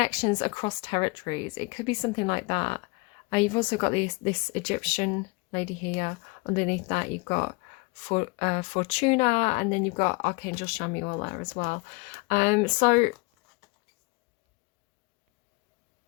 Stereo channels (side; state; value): right; quieter; 27.2 dB